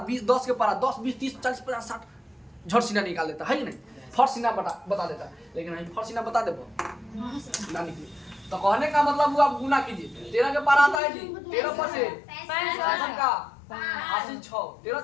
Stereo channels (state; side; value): drops out; right; at 11.0 s